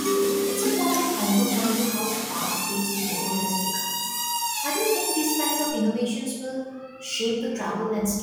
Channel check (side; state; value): both; identical; correlation 1.00